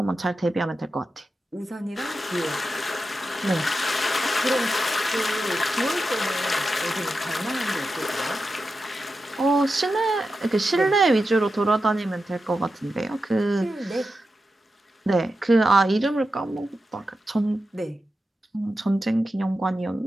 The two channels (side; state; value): both; normal; correlation 0.90